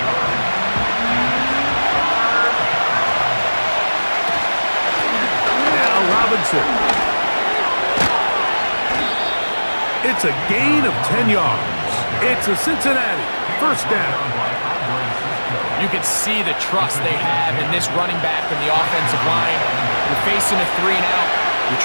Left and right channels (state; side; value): inverted; both; correlation -1.00